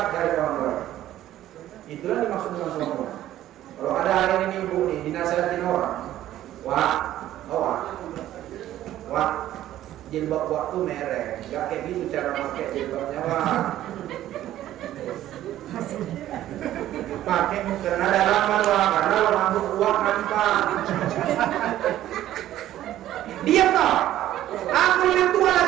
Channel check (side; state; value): left; quieter; 13.2 dB